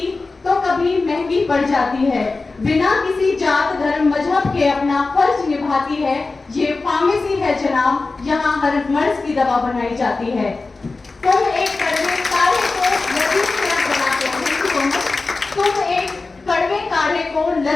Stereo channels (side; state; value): right; quieter; 3.7 dB